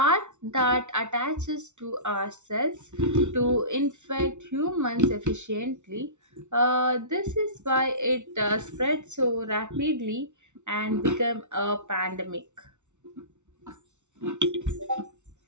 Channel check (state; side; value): late; left; 0.84 ms